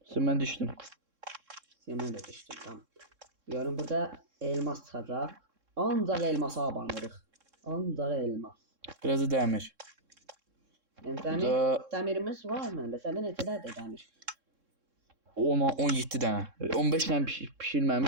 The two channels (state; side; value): late; left; 3.6 ms